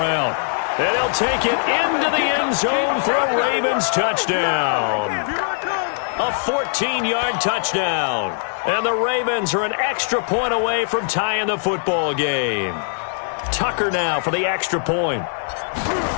And he'll take it into the end zone for a Ravens touchdown. A 14-yard touchdown. And the Ravens are an extra point away from tying the football game. Tucker now for the extra point.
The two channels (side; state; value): right; silent; 65 dB below the other